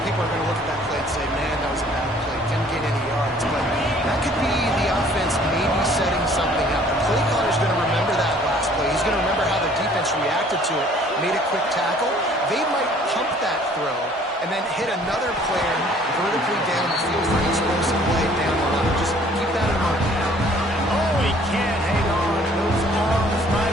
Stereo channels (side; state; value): both; normal; correlation 0.56